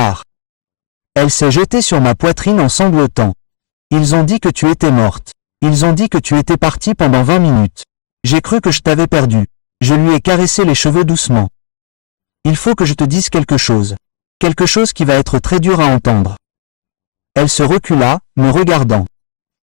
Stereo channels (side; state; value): right; silent; digital silence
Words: Elle s'est jetée sur ma poitrine en sanglotant. Ils ont dit que tu étais morte. Ils ont dit que tu étais partie pendant 20 minutes. J'ai cru que je t'avais perdu. Je lui ai caressé les cheveux doucement. Il faut que je te dise quelque chose. Quelque chose qui va être très dur à entendre. Elle se recula, me regardant.